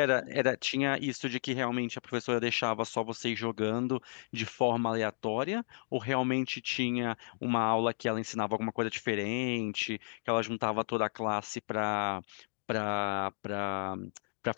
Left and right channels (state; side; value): silent; right; digital silence